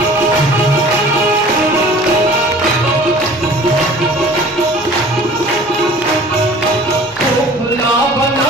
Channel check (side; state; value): both; normal; correlation 0.47